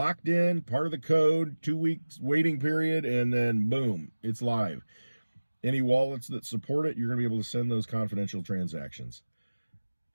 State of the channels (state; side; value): inverted; both; correlation -1.00